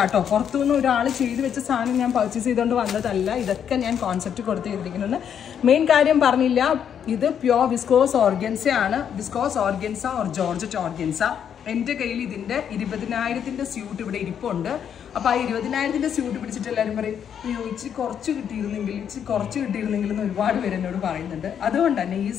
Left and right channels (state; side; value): quieter; right; 8.5 dB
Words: പുറത്തുനിന്ന് ഒരാൾ ചെയ്ത് വെച്ച സാധനം ഞാൻ പർച്ചേസ് ചെയ്തുകൊണ്ട് വന്നതല്ല. ഇതൊക്കെ ഞാൻ കോൺസെപ്റ്റ് കൊടുത്ത് ചെയ്തിരിക്കുന്നത്. മെയിൻ കാര്യം പറഞ്ഞില്ല, ഇത് പ്യോർ വിസ്കോസ് ഓർഗൻസ ആണ്. Viscous organza or georgette organza. എൻ്റെ കയ്യിൽ ഇതിൻ്റെ 20,000 സ്യൂട്ട് ഇവിടെ ഇരിപ്പുണ്ട്. അപ്പോൾ ആ 20,000 സ്യൂട്ട് പിടിച്ചിട്ട് എല്ലാവരും പറയും, അയ്യോ ഇച്ചിരി കുറച്ച് കിട്ടിയിരുന്നെങ്കിൽ എന്ന് ഒരുപാട് പേര് എന്നോട് പറയുന്നുണ്ട്. അതുകൊണ്ട് തന്നെ ഈ